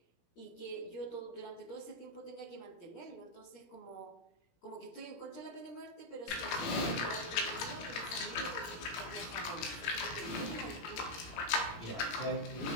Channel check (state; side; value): late; right; 17 ms